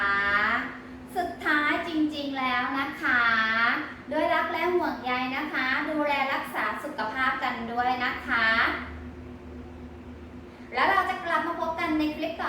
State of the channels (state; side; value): identical; both; correlation 1.00